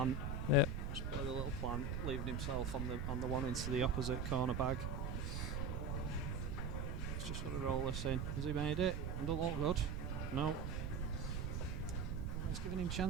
Yeah. Just play the little plant, leaving himself on the one into the opposite corner bag. He's just got to roll this in. Has he made it? It don't look good. No. Well, he's giving him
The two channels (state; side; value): noise; right; rumble, 2 dB below the sound